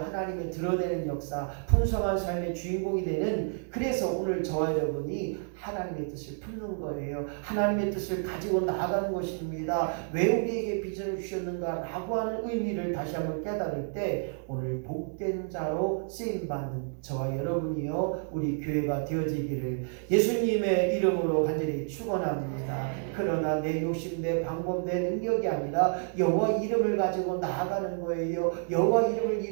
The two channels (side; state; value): left; silent; 58 dB below the other